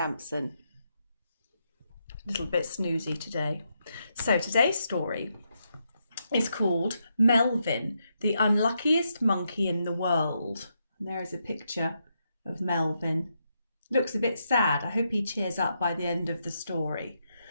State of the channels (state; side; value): inverted; both; correlation -0.81